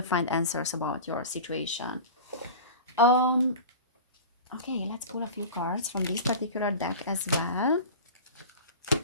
find answers about your situation. Um, okay, let's pull a few cards from this particular deck as well.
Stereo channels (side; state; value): both; inverted; correlation -0.33